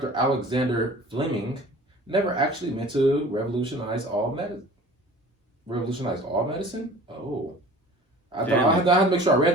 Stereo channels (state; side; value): normal; both; correlation 0.44